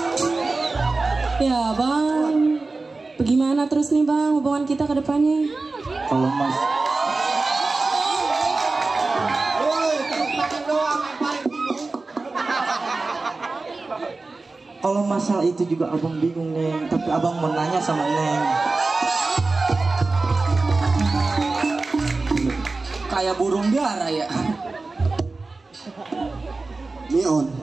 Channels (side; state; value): left; quieter; 3.6 dB